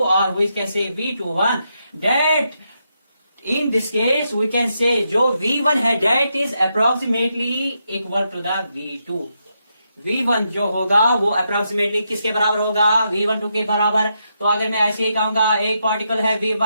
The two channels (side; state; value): both; inverted; correlation -0.82